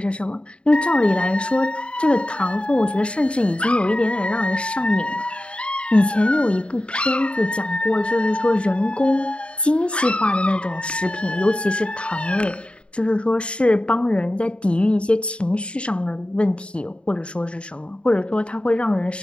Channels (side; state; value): right; late; 0.057 ms